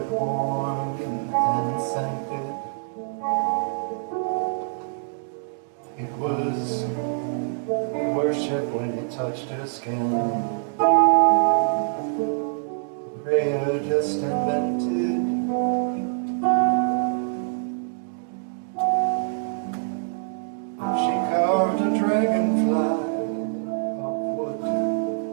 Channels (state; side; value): silent; left; digital silence